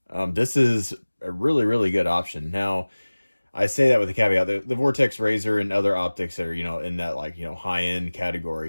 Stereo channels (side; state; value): both; inverted; correlation -1.00